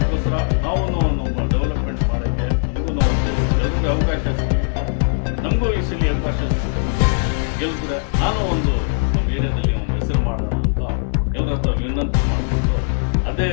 ನಾವು ನಮ್ಮ ಡೆವಲಪ್ಮೆಂಟ್ ಮಾಡೋಕ್ಕೆ ನಮಗೂ ಎಲ್ರಿಗೂ ಅವಕಾಶ ಸಿಗುತ್ತೆ. ನಮಗೂ ಈ ಸಲ ಅವಕಾಶ ಗೆಲ್ಸಿದ್ರೆ ನಾನು ಒಂದು ನಮ್ಮ ಏರಿಯಾದಲ್ಲಿ ಒಂದು ಹೆಸರು ಮಾಡೋಣ ಅಂತ ಎಲ್ಲರ ಹತ್ರ ವಿನಂತಿ ಮಾಡಿಕೊಂಡು ಅದೇ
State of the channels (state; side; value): silent; right; 66 dB below the other